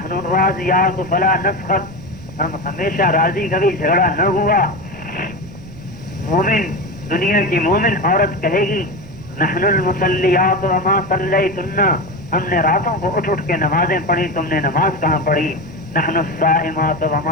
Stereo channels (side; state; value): right; noise; rumble, 18 dB below the sound